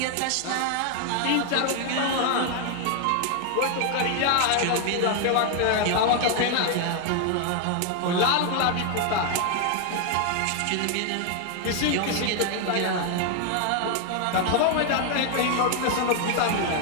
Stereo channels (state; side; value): different; both; correlation 0.00